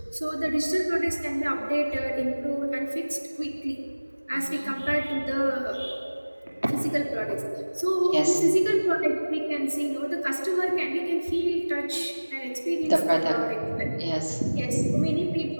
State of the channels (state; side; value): inverted; both; correlation -1.00